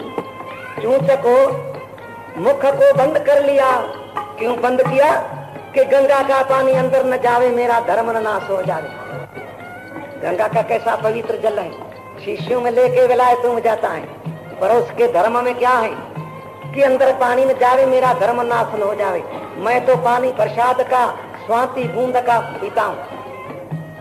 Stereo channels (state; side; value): identical; both; correlation 1.00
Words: चूंच को मुख को बंद कर लिया। क्यों बंद किया? कि गंगा का पानी अंदर न जावे, मेरा धर्म न नाश हो जावे। गंगा का कैसा पवित्र जल है, शीशियों में लेके विलायत में जाता है, पर उसके धर्म में क्या है कि अंदर पानी में जावे, मेरा धर्म नाश न हो जावे। मैं तो पानी प्रसाद का स्वाति बूंद का पीता हूं।